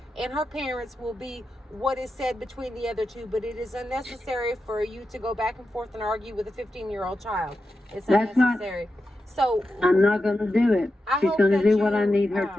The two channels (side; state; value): both; normal; correlation 0.90